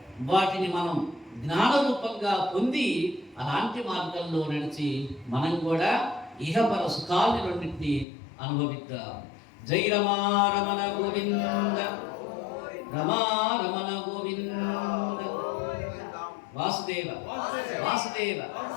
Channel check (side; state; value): right; drops out; at 8.1 s